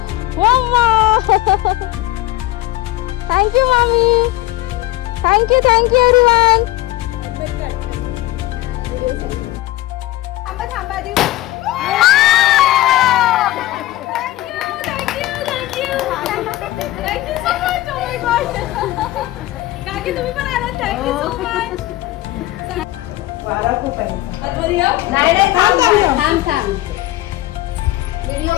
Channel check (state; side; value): quieter; right; 16.9 dB